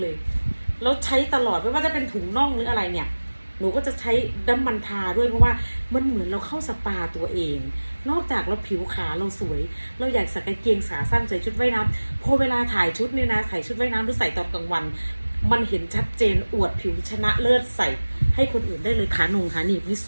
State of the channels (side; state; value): both; inverted; correlation -1.00